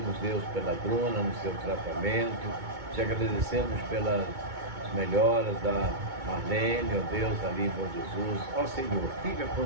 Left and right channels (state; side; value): late; left; 2.2 ms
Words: Deus, pela Bruna no seu tratamento. Te agradecemos pelas melhoras da Marlene, ó Deus, ali em Bom Jesus. Ó Senhor, fica